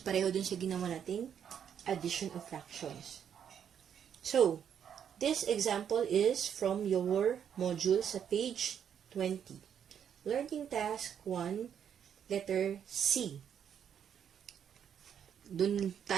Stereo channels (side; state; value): left; quieter; 8.5 dB